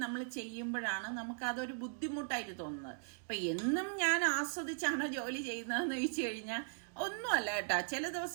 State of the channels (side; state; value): left; silent; digital silence